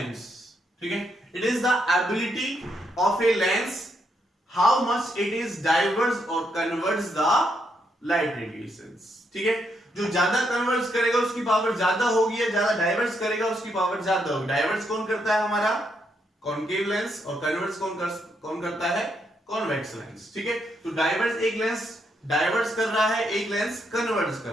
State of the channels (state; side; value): normal; both; correlation 0.78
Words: ठीक है, it is the ability of a lens how much it is diverse और कन्वर्ट्स द लाइट रेडिएशंस, ठीक है। जो ज्यादा कन्वर्ट्स करेगा उसकी पावर ज्यादा होगी, या ज्यादा डाइवर्स करेगा उसकी पावर ज्यादा होगी। डाइवर्स कौन करता है, हमारा कॉनकेव लेंस, और कन्वर्ट्स कौन करता है, कॉन्वेक्स लेंस, ठीक है। तो डाइवर्स एक लेंस डाइवर्स कर रहा है, एक लेंस कन्वर्ट्स कर